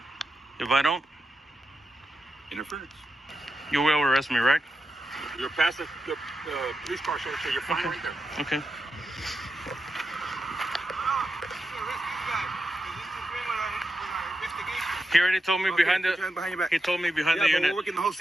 If I don't, Interference. you will arrest me, right? You're past the police car, sir, so you're fine right there. Okay. He already told me behind the. Behind your back. He told me behind Yeah, the but unit. we're working the whole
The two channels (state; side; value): normal; both; correlation 0.88